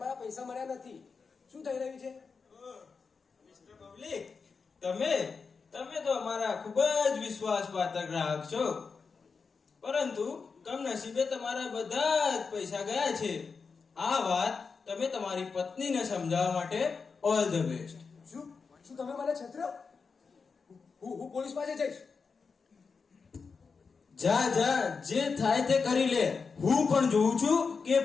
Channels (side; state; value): right; quieter; 5.1 dB